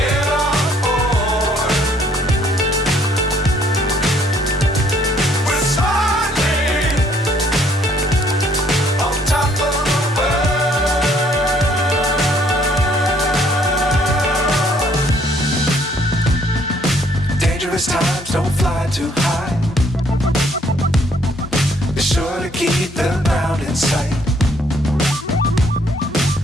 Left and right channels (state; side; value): normal; both; correlation 0.64